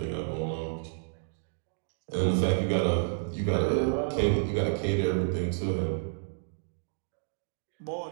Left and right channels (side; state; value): left; silent; digital silence